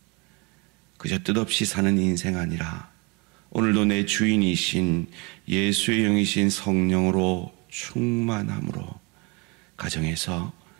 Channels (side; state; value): left; quieter; 25.9 dB